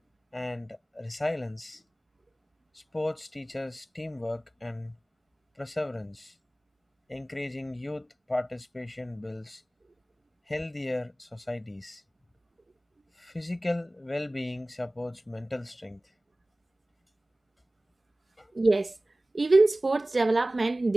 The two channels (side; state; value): both; normal; correlation 0.98